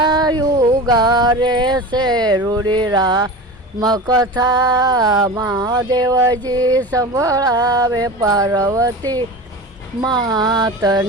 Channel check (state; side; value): normal; both; correlation 0.31